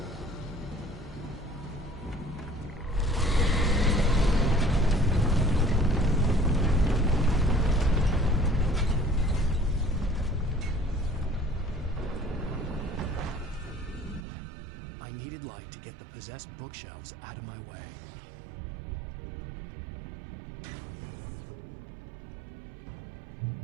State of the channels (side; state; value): left; drops out; at 14.2 s